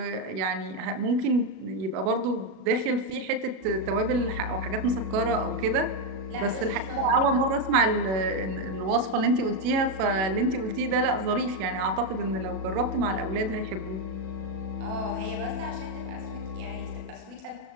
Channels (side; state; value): left; late; 37 ms